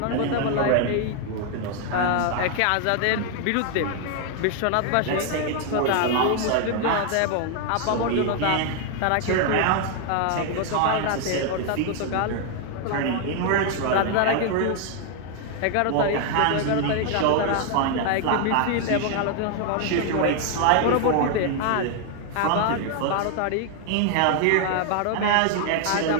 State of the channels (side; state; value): both; different; correlation 0.00